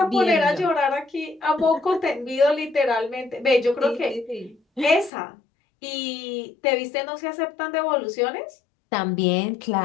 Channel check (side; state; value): right; drops out; at 5.1 s